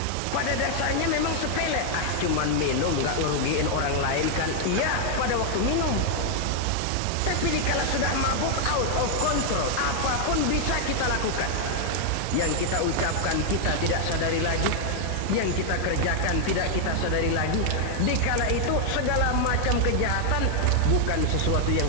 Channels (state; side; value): different; both; correlation 0.00